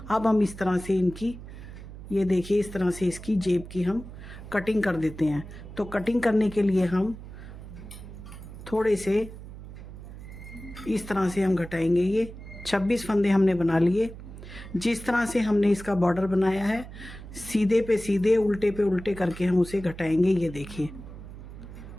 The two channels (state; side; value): noise; right; hum, 13 dB below the sound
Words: अब हम इस तरह से इनकी ये देखिए इस तरह से इसकी जेब की हम कटिंग कर देते हैं। तो कटिंग करने के लिए हम थोड़े से इस तरह से हम घटाएंगे। ये 26 फंदे हमने बना लिए। जिस तरह से हमने इसका बॉर्डर बनाया है सीधे पे सीधे उल्टे पे उल्टे करके हम उसे घटाएंगे। ये देखिए